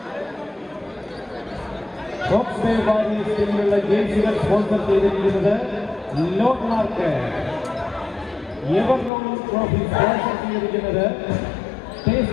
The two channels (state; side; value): drops out; right; at 9.1 s